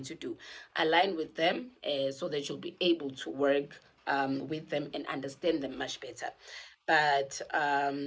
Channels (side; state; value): both; identical; correlation 1.00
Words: to do. Align with them, so that you'll be able to work with them and understand them much better. But